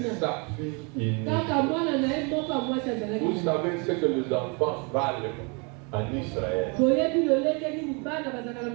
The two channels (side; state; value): left; quieter; 33.0 dB